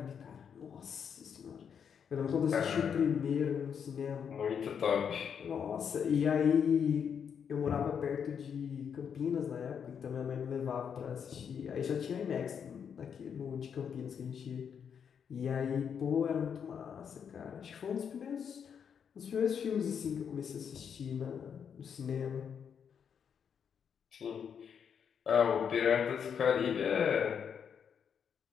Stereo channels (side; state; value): right; quieter; 7.4 dB